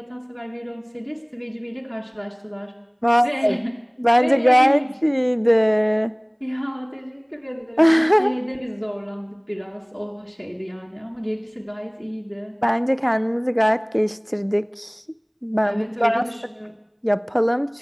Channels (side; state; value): both; identical; correlation 1.00